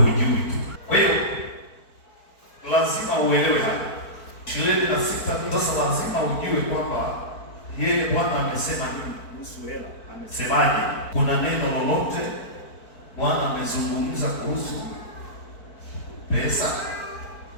tu. Kwa hiyo lazima uelewe hapa 26. Sasa lazima ujue kwamba yeye Bwana amesema nini kuhusu hela, amesemaje. Kuna neno lolote Bwana amezungumza kuhusu pesa,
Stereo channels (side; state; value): right; late; 4.5 ms